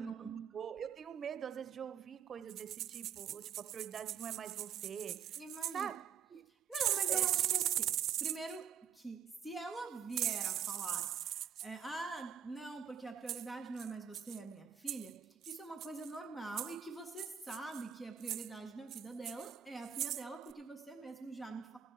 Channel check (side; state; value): left; quieter; 8.3 dB